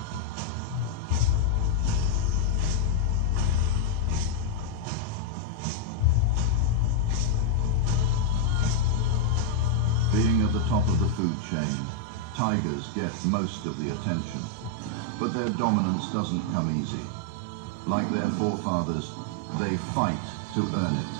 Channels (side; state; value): both; different; correlation 0.00